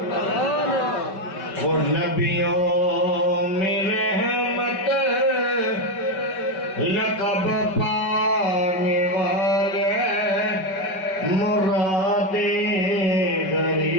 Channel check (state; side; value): late; right; 5.3 ms